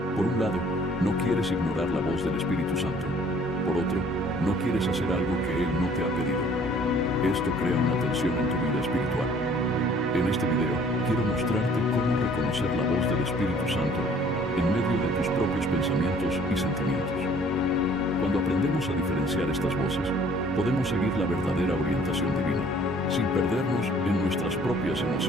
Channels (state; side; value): normal; both; correlation 0.56